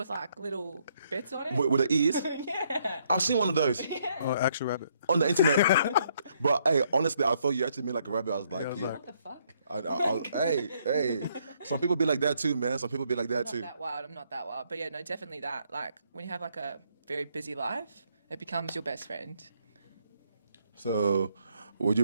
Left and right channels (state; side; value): inverted; both; correlation -0.71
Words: like little bits on it. with the ears. Yeah. I've seen one of those Oh, actual rabbit. on the internet. But hey, honestly, I thought you actually mean like a rabbit. I was like, Yeah, I was yeah. like- What the fuck? Hey, some people be like that too, man. Some people be like that Not too. that wild. I'm not that wild. But yeah, no, definitely that. Like when you have like a very busy life, it becomes your best friend. So, would